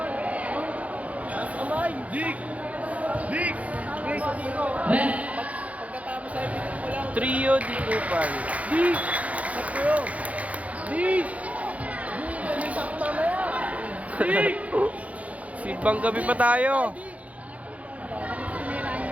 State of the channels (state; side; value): late; left; 0.067 ms